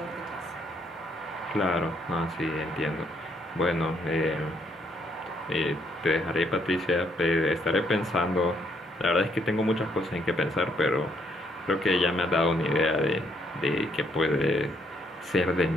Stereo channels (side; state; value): both; normal; correlation 0.71